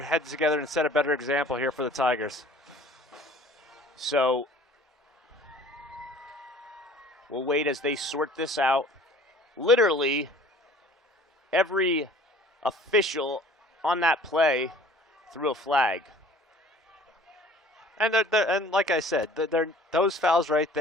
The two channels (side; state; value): both; normal; correlation 0.49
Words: together and set a better example here for the Tigers. So we'll wait as they sort this out. Literally every official on that play threw a flag. And and like I said, those fouls right